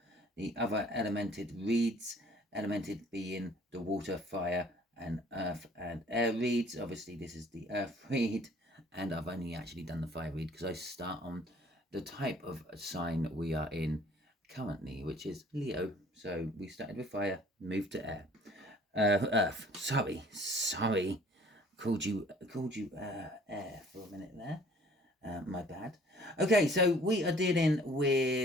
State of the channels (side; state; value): both; normal; correlation 0.55